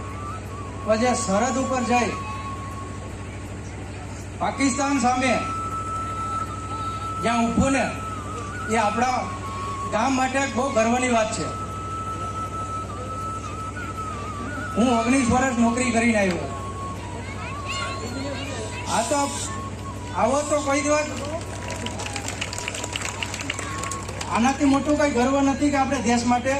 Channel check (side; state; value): both; identical; correlation 1.00